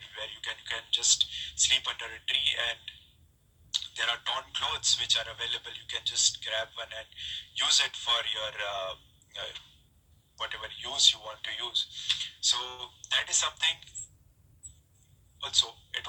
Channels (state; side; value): identical; both; correlation 1.00